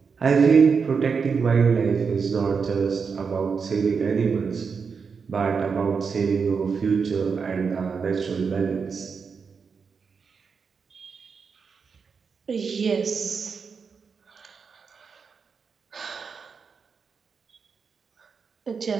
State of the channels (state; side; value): quieter; left; 5.6 dB